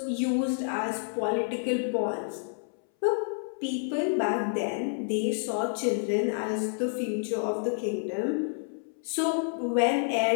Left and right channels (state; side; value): silent; right; 59 dB below the other